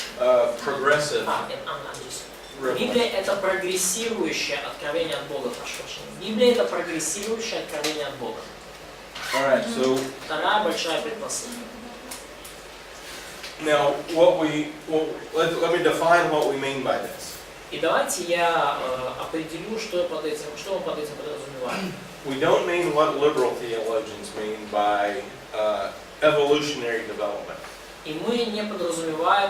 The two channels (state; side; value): identical; both; correlation 1.00